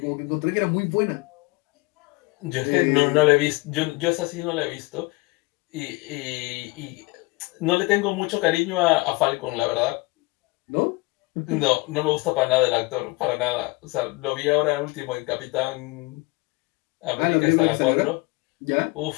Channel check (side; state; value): right; quieter; 24.2 dB